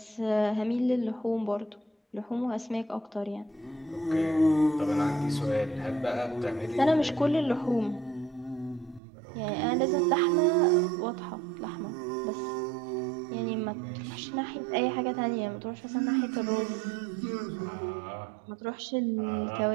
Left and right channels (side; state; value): left; drops out; at 9.0 s